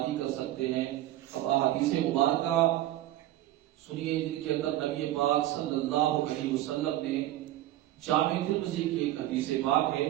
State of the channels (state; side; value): quieter; left; 14.5 dB